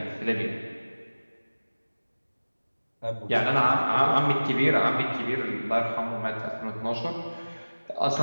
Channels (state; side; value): inverted; both; correlation -1.00